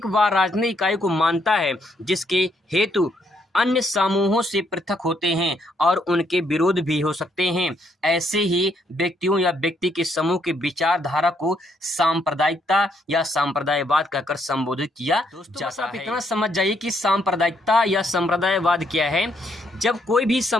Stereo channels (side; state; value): both; normal; correlation 0.73